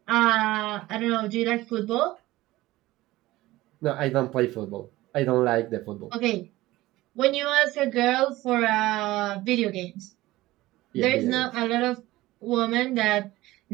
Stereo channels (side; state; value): left; quieter; 17.8 dB